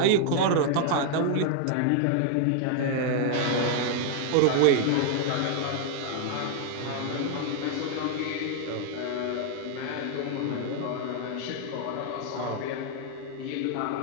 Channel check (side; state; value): both; different; correlation 0.00